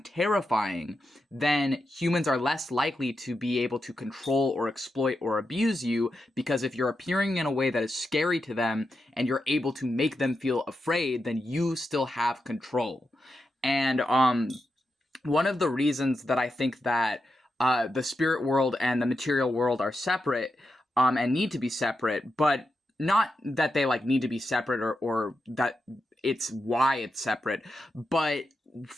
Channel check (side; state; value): both; normal; correlation 0.87